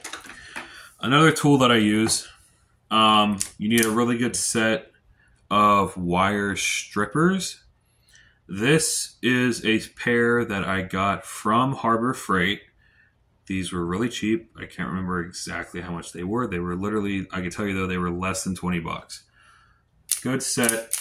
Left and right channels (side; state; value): both; identical; correlation 1.00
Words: Another tool that I use, you need a really good set of wire strippers. This is a pair that I got from Harbor Freight. These were really cheap. I can't remember exactly how much they were. They were literally, I can tell you though, they were less than $20. Good set